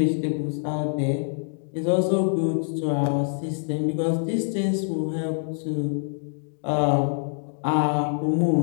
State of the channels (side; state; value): right; silent; digital silence